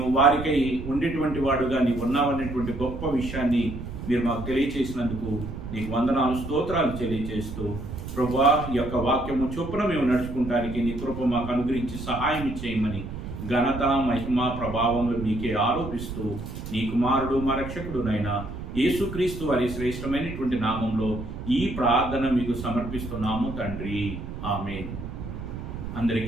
వారికై ఉండేటువంటి వాడుగా నీవు ఉన్నావనేటువంటి గొప్ప విషయాన్ని మీరు మాకు తెలియచేసినందుకు నీకు వందనాలు, స్తోత్రాలు తెలియజేస్తూ ప్రభువా ఈ యొక్క వాక్యము చొప్పున మేము నడుచుకుంటానికి నీ కృప మాకు అనుగ్రహించి సహాయం చేయమని ఘనత మహిమ ప్రభావములు మీకే ఆరోపిస్తూ నీ కుమారుడు మా రక్షకుడునైనా యేసుక్రీస్తు వారి శ్రేష్టమైనటువంటి నామంలో ఈ ప్రార్థన మీకు సమర్పిస్తున్నాము తండ్రి. ఆమేన్.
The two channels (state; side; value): noise; right; rumble, 8 dB below the sound